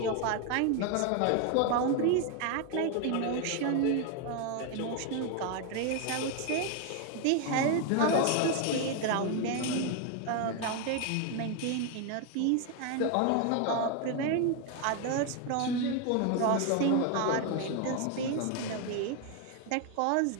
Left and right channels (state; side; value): different; both; correlation 0.01